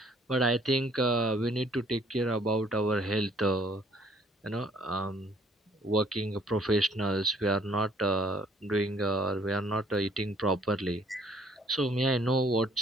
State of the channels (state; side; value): normal; both; correlation 0.60